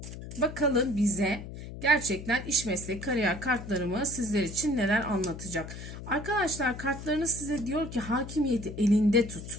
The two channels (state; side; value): noise; left; hum, 11 dB below the sound